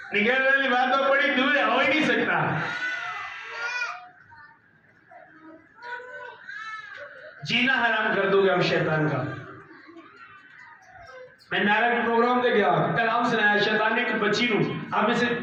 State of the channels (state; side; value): identical; both; correlation 1.00